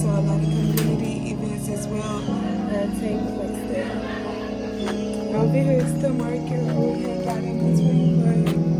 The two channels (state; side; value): identical; both; correlation 1.00